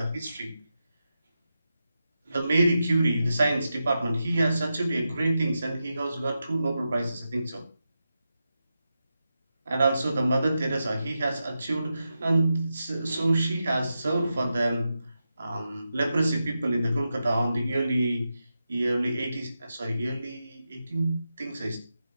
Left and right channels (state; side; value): inverted; both; correlation -0.89